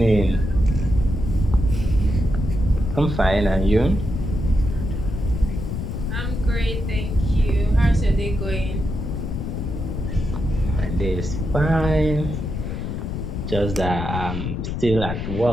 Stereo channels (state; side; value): noise; left; rumble, 4 dB below the sound